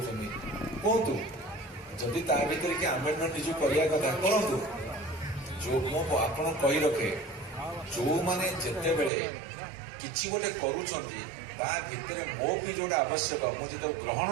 କୁହନ୍ତୁ, ଯଦି ତା ଭିତରେ କି ଆମେଣ୍ଡମେଣ୍ଟ ନିଜକୁ କରିବା କଥା କରନ୍ତୁ। ଯୋଉ ମୁଁ ଆପଣ କହି ରଖେ, ଯୋଉମାନେ ଯେତେବେଳେ କିଛି ଗୋଟେ କରୁଛନ୍ତି ତା ଭିତରେ ମୋ ବି ଯୋଉଟା ଆବଶ୍ୟକ ମୁଁ ଯେତେବେଳେ ଗ୍ରହଣ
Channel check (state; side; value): drops out; left; at 9.1 s